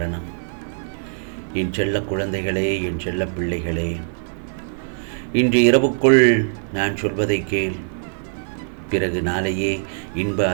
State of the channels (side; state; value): left; silent; digital silence